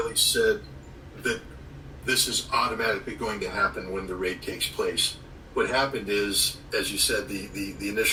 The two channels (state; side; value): identical; both; correlation 1.00